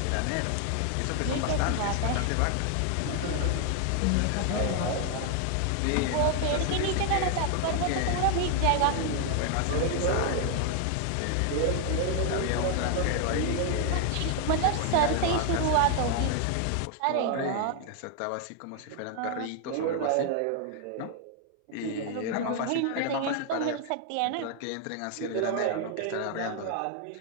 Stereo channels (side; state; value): both; different; correlation 0.00